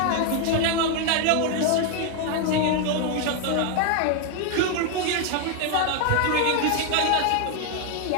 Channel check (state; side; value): different; both; correlation 0.01